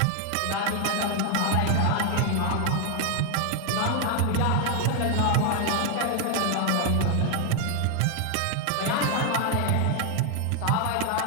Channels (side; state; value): both; different; correlation 0.01